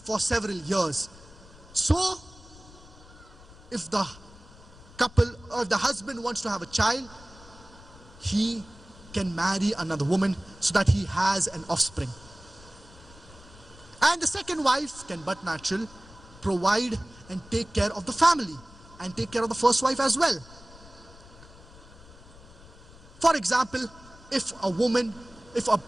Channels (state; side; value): noise; left; rumble, 21 dB below the sound